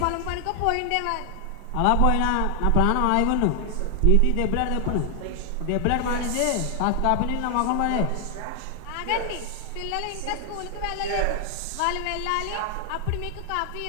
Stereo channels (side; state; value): both; different; correlation 0.00